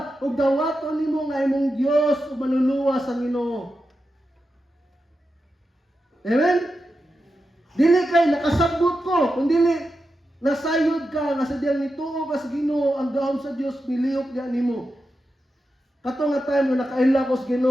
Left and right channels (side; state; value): both; normal; correlation 0.89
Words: ug dawaton nimo nga imong Dios ug manluluwas ang Ginoo. Amen. Dili kay nakasabot ko, kundi nasayod ka nga sa diyang nituo ka sa Ginoo, ang gahom sa Dios nilihok diha nimo. Kato nga time na nakaila ko sa